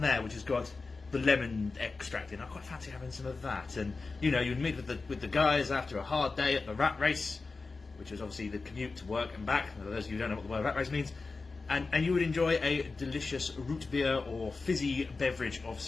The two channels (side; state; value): right; quieter; 4.0 dB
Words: there, which has got the lemon extract in. I quite fancy having some of that. And you know, you'd meet with the guys after a hard day at the rat race, which was obviously the commute to work and back. For those of you who don't know what the word rat race means, and you would enjoy a delicious root beer or fizzy beverage of